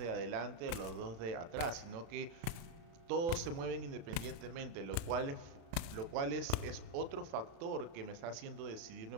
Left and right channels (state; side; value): late; left; 35 ms